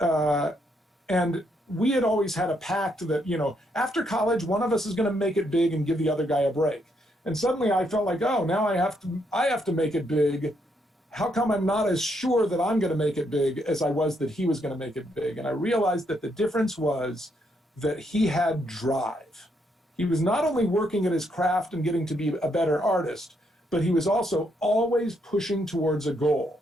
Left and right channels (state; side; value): normal; both; correlation 0.75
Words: we had always had a pact that, you know, after college, one of us is going to make it big and give the other guy a break. And suddenly I felt like, oh, now I have to make it big. How come I'm not as sure that I'm going to make it big as I was that he was going to make it big? And I realized that the difference was that he had drive. He was not only working at his craft and getting to be a better artist, but he was also always pushing towards a goal.